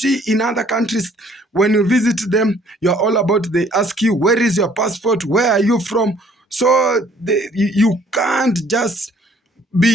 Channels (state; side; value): normal; both; correlation 0.59